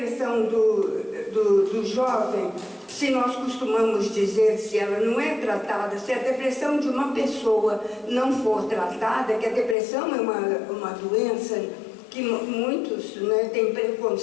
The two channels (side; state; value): right; drops out; at 9.8 s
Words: do jovem, se nós costumamos dizer, se ela não é tratada, se a depressão de uma pessoa não for tratada, que a depressão é uma doença que muitos, né, têm